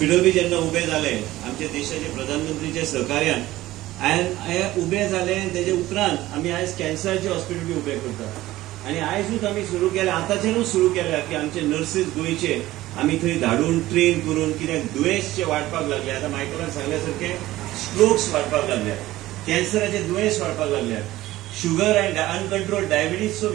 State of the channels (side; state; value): left; quieter; 16.4 dB